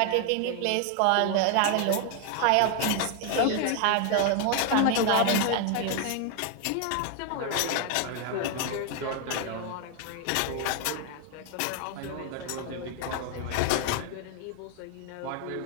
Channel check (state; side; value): different; both; correlation 0.01